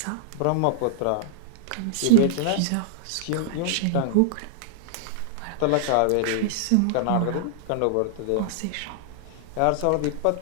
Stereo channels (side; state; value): both; different; correlation -0.01